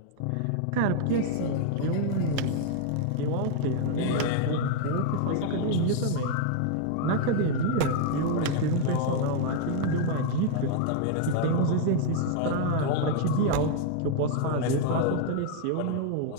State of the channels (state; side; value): different; both; correlation 0.00